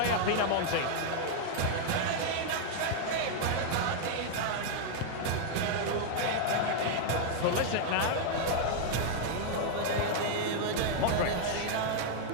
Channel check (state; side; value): different; both; correlation 0.00